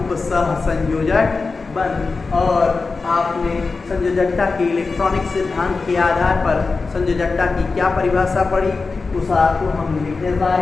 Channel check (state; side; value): quieter; right; 4.2 dB